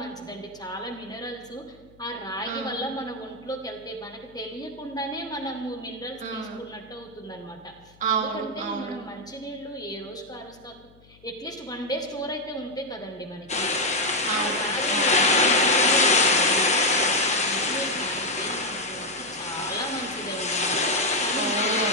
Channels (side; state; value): left; noise; hum, 27 dB below the sound